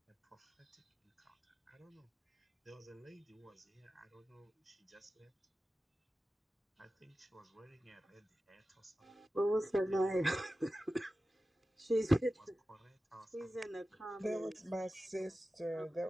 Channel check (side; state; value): both; normal; correlation 0.94